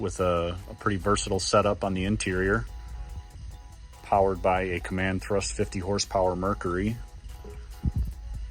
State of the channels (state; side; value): identical; both; correlation 1.00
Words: a pretty versatile setup on the interior, powered by a command thrust 50 horsepower Mercury.